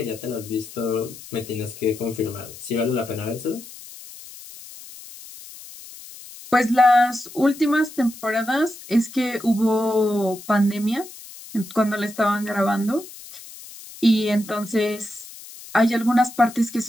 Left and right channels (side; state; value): left; noise; hiss, 16 dB below the sound